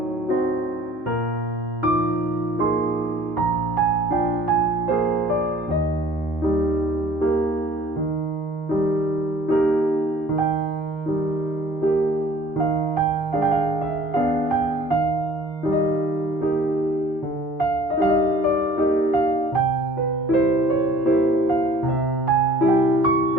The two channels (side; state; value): both; normal; correlation 0.52